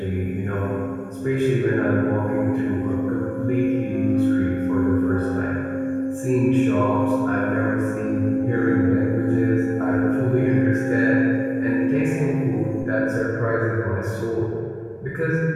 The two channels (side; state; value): both; identical; correlation 1.00